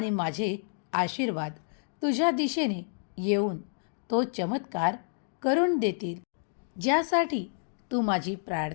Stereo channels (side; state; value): right; silent; digital silence